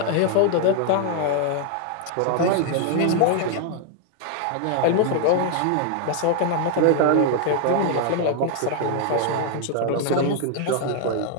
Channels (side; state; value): both; different; correlation 0.00